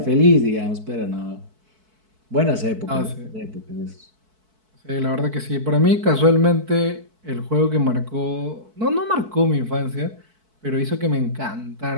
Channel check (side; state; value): left; late; 4.6 ms